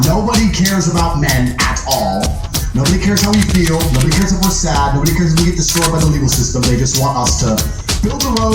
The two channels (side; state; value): both; identical; correlation 1.00